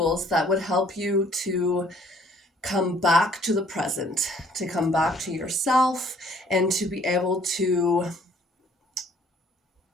that would help you to come back to the present, to come back to yourself, and to be able to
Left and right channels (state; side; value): normal; both; correlation 0.59